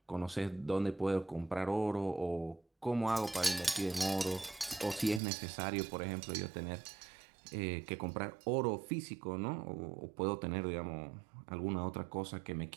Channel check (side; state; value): left; drops out; at 5.2 s